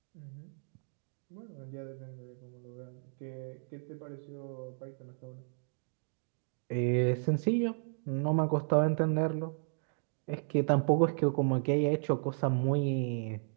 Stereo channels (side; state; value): left; silent; digital silence